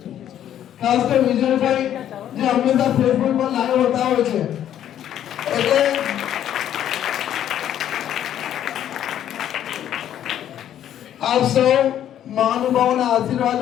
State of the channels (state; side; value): quieter; right; 10.8 dB